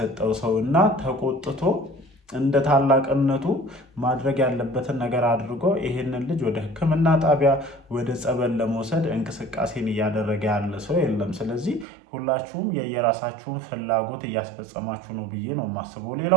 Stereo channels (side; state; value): left; drops out; at 11.9 s